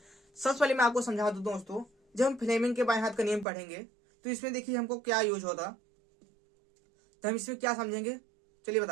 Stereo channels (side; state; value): left; drops out; at 3.5 s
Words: सबसे पहले मैं आपको समझा दूं दोस्तों, जब हम फ्लेमिंग के बाएं हाथ का नियम पढ़ेंगे तो इसमें देखिए हमको क्या यूज होता, तो हम इसमें क्या समझेंगे चलिए